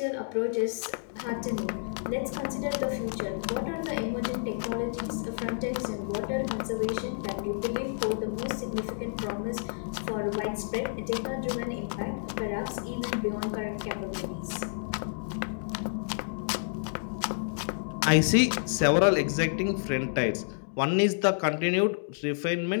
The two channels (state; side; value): silent; right; digital silence